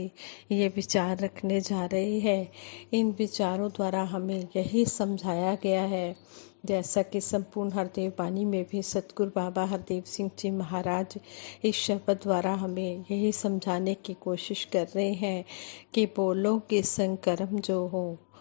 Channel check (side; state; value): right; silent; digital silence